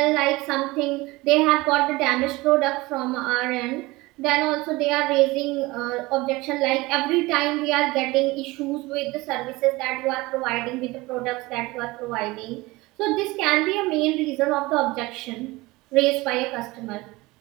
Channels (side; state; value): left; quieter; 21.4 dB